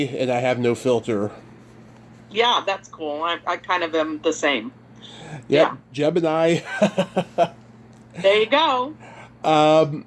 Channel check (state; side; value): identical; both; correlation 1.00